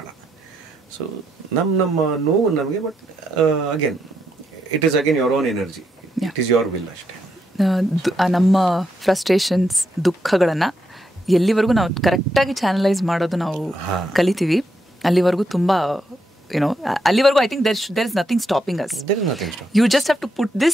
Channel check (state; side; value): normal; both; correlation 0.80